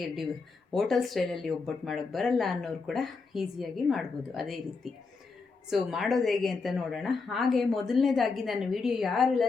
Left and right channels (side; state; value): right; quieter; 4.4 dB